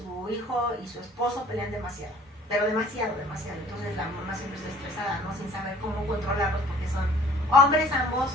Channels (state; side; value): normal; both; correlation 0.53